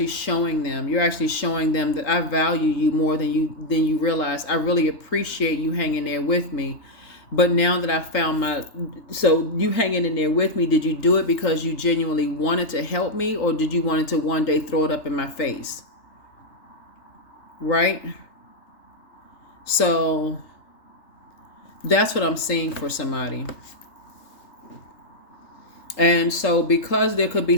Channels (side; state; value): right; late; 3.3 ms